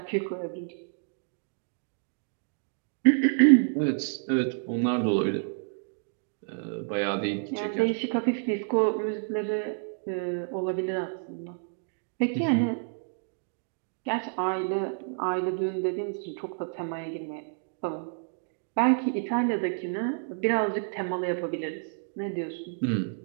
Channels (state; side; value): silent; left; digital silence